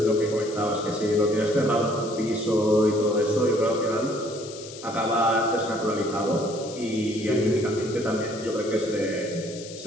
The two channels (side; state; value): left; noise; hiss, 15 dB below the sound